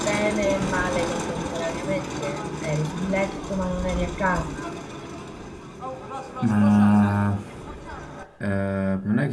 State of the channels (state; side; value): identical; both; correlation 1.00